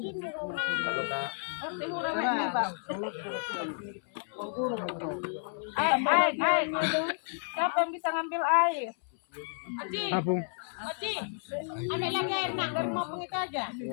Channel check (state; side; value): silent; right; 57 dB below the other